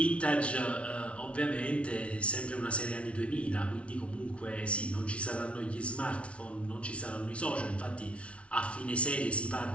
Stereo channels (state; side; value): late; right; 0.061 ms